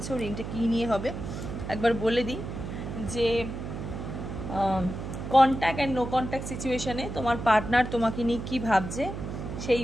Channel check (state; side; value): noise; right; hum, 7 dB below the sound